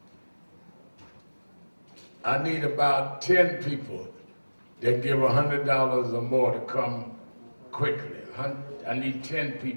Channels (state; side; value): inverted; both; correlation -1.00